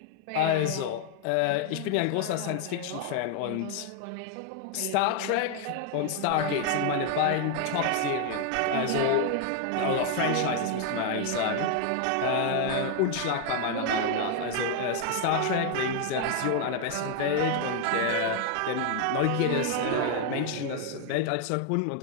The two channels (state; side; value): different; both; correlation 0.01